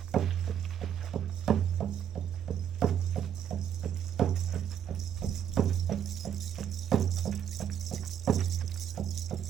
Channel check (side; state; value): left; quieter; 9.3 dB